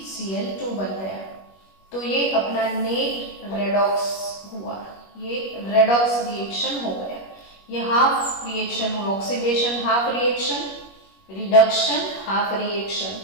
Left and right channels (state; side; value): late; right; 21 ms